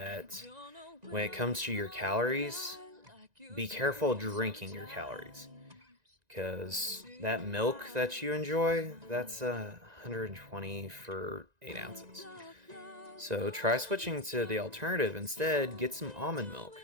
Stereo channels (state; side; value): late; left; 1.9 ms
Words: when it comes to your calories, be careful drinking your calories. Because that milk that you enjoy, that's 120 for 8 ounces. So try switching to the alternative instead. Get some almond milk.